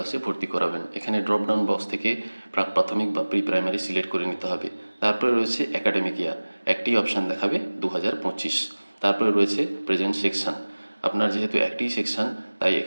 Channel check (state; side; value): inverted; both; correlation -1.00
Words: ভর্তি করাবেন। এখানে ড্রপডাউন বক্স থেকে প্রাক প্রাথমিক বা প্রি প্রাইমারি সিলেক্ট করে নিতে হবে। তারপরে রয়েছে একাডেমিক ইয়ার, একটি অপশান দেখাবে 2025। তারপরে রয়েছে প্রেজেন্ট সেকশন, আপনার যেহেতু একটি সেকশন তাই